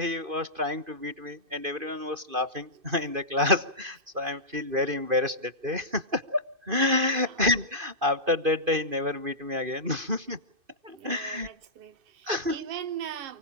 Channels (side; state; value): left; late; 2.5 ms